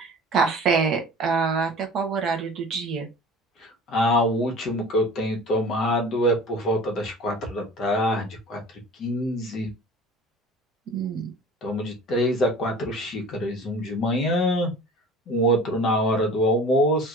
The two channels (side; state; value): both; normal; correlation 0.42